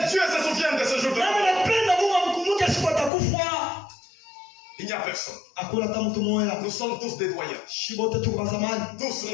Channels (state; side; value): drops out; right; at 3.1 s